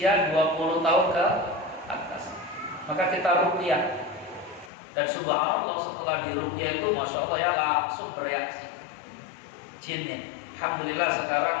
20 tahun ke atas. Maka kita ruqyah, dan subhanallah setelah diruqyah itu masya Allah ya langsung bereaksi jinnya. Alhamdulillah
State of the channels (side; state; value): right; drops out; at 4.7 s